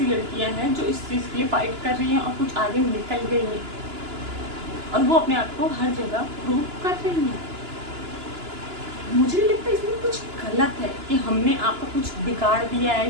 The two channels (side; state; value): left; late; 2.9 ms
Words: लड़कियां हैं जो इस चीज़ के लिए फाइट कर रही हैं और कुछ आगे निकल गई हैं और वो अपने आप को हर जगह प्रूव कर रही हैं। मुझे नहीं लगता इसमें कुछ गलत है कि हमने आपका कुछ बिगाड़ दिया